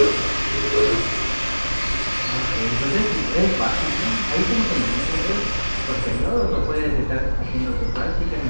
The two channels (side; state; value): both; inverted; correlation -1.00